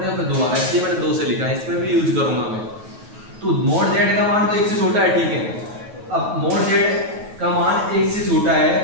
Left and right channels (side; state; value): left; late; 9.3 ms